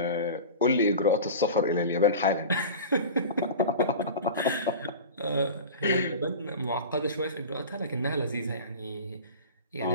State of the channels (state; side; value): inverted; both; correlation -0.33